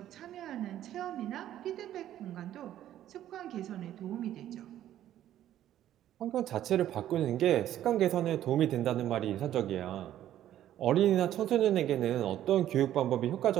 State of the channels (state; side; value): quieter; left; 12.1 dB